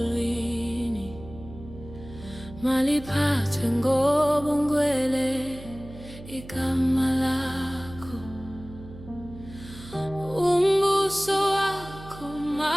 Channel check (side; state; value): right; noise; hum, 15 dB below the sound